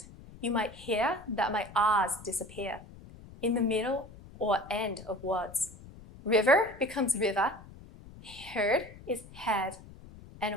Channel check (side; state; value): left; noise; rumble, 18 dB below the sound